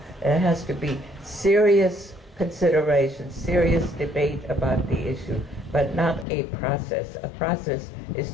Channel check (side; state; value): right; drops out; at 6.2 s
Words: There has to be serious consideration, serious debate about the issue, but not a process. A process is